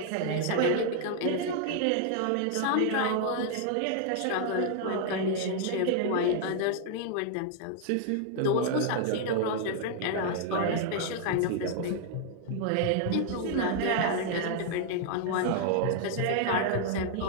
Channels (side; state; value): both; different; correlation 0.00